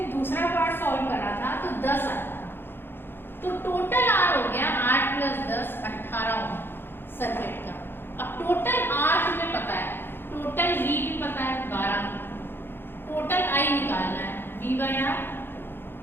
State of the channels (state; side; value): late; right; 0.10 ms